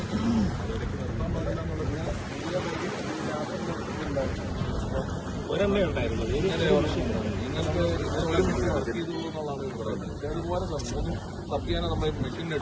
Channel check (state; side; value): identical; both; correlation 1.00